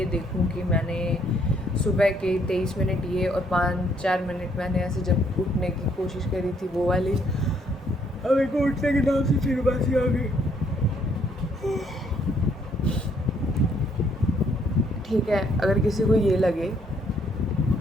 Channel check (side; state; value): both; normal; correlation 0.68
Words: देखूं कि मैंने सुबह के 23 मिनट ये और 5-4 मिनट मैंने ऐसे जब उठने की कोशिश करी थी वो वाली, अब एक उठने के नाम से फिर बासी आ गई, ठीक है। अगर किसी को ये लगे,